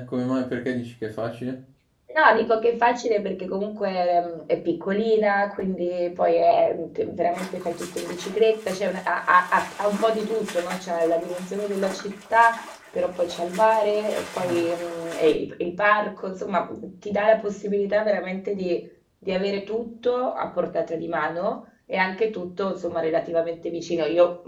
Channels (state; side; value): identical; both; correlation 1.00